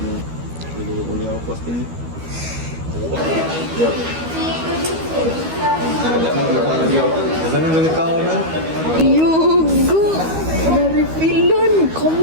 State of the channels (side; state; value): left; late; 13 ms